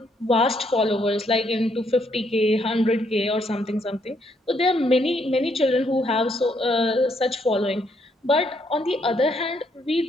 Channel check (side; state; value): both; normal; correlation 0.72